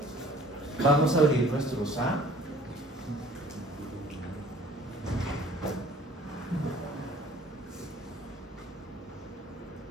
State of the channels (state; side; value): normal; both; correlation 0.51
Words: Vamos a abrir nuestro SA.